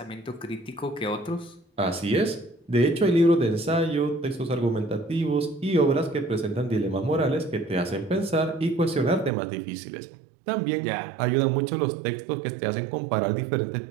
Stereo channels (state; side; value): drops out; left; at 9.3 s